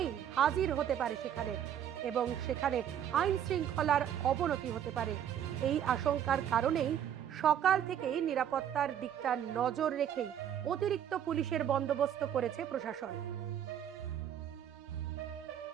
হাজির হতে পারে সেখানে, এবং সেখানে আইন শৃঙ্খলার অবনতি হতে পারে। এই আশঙ্কার কারণেই সকাল থেকেই নিরাপত্তার দিকটা নজর রেখেই অতিরিক্ত পুলিশের বন্দোবস্ত করেছে প্রশাসন।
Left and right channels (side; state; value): left; quieter; 9.7 dB